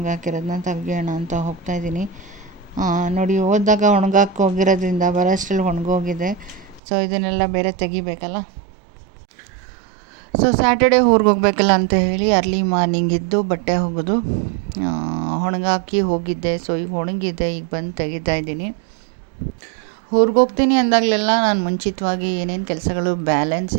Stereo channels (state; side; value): drops out; left; at 6.8 s